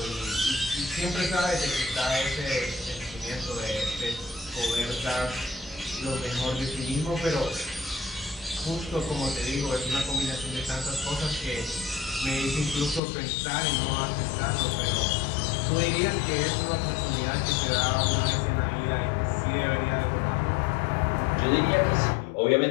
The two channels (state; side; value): drops out; right; at 13.0 s